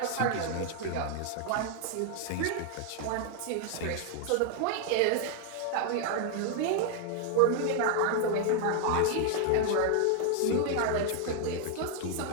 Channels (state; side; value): different; both; correlation 0.00